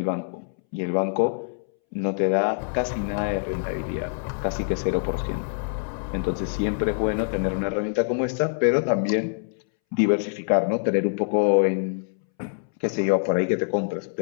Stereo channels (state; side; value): silent; right; 62 dB below the other